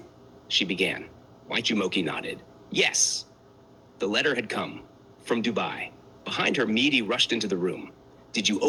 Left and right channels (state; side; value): identical; both; correlation 1.00